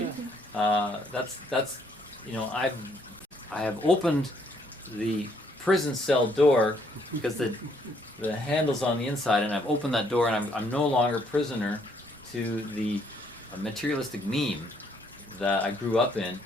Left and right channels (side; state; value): both; normal; correlation 0.68